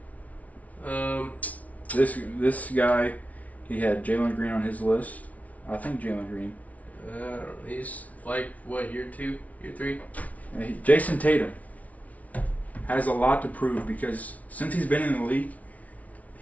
This guy, he had Jalen Green on his list. I think Jalen Green. He's like what, year 2, year 3? Jason Tatum has a lot to prove, because since he's been in the league,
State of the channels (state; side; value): late; right; 0.070 ms